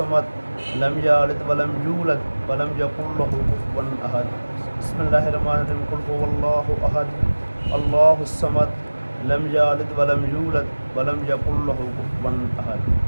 लम यलिद वलम यूलद वलम यकुल लहू कुफुवन अहद। बिस्मिल्लाहिर्रहमानिर्रहीम। कुल हुवल्लाहु अहद अल्लाहुस समद लम यलिद वलम यूलद वलम यकुल लहू कुफुवन अहद।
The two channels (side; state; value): both; inverted; correlation -1.00